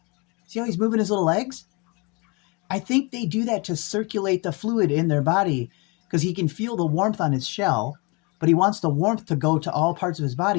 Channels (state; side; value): quieter; right; 29.8 dB